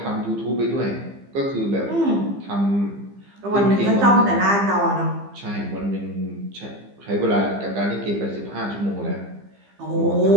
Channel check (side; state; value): left; late; 15 ms